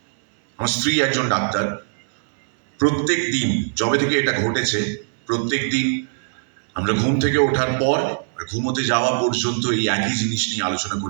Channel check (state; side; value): silent; left; 64 dB below the other